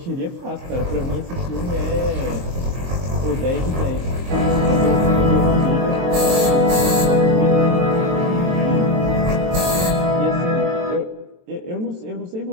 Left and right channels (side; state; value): left; late; 23 ms